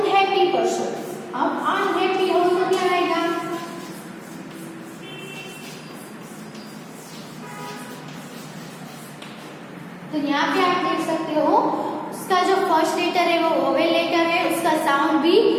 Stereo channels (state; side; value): identical; both; correlation 1.00